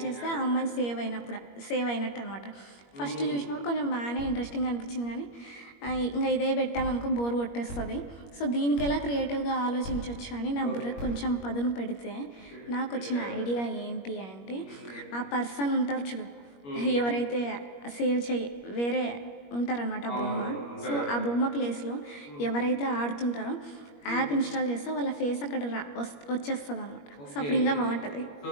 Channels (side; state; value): right; late; 21 ms